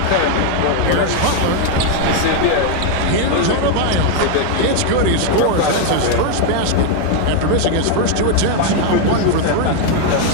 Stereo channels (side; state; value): both; different; correlation 0.01